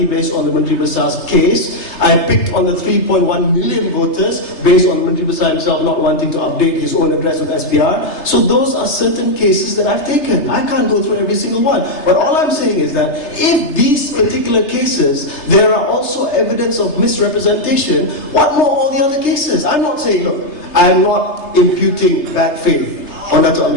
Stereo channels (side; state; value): right; late; 3.3 ms